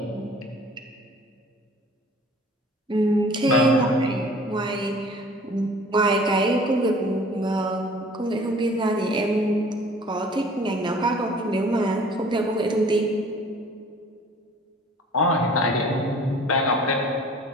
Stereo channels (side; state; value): both; normal; correlation 0.50